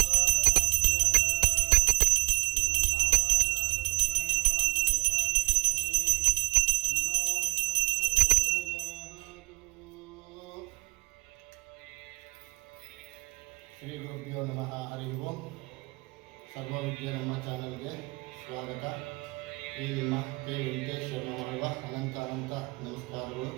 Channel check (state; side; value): quieter; left; 25.5 dB